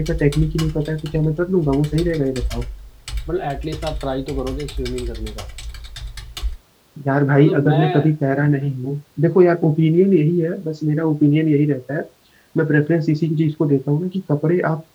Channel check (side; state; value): both; identical; correlation 1.00